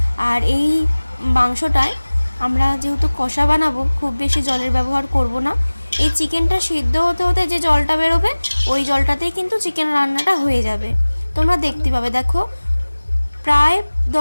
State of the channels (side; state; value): both; inverted; correlation -1.00